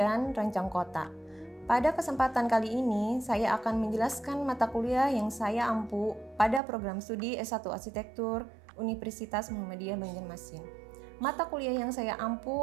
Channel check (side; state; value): left; drops out; at 6.6 s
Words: rancang kota. Pada kesempatan kali ini, saya akan menjelaskan mata kuliah yang saya ampu pada program studi S1 Arsitektur Universitas Muhammadiyah Banjarmasin. Mata kuliah yang saya